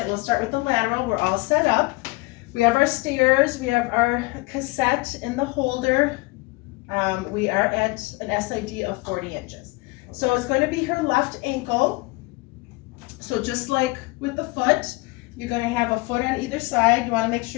we'll start with the lateral. We're all set up. We have our stairs, we have our cassette in the holder. We are at an SID of 40 inches. So it's going to be her left ankle. So just like with the foot, you're going to have a foot on either side. You want to make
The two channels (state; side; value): quieter; right; 24.3 dB